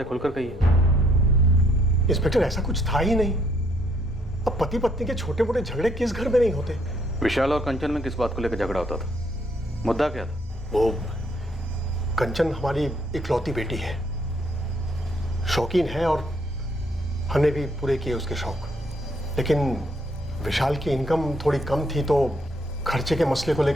खुलकर कहिए। इंस्पेक्टर, ऐसा कुछ था ही नहीं। अब पति पत्नी के छोटे मोटे झगड़े किस घर में नहीं होते? विशाल और कंचन में किस बात को लेकर झगड़ा होता था? मुद्दा क्या था? वो कंचन हमारी इकलौती बेटी है, शौकीन है, और हमने भी पूरे किए उसके शौक। लेकिन विशाल की इनकम थोड़ी कम थी, तो खर्चे के मसले को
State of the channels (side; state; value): both; normal; correlation 0.69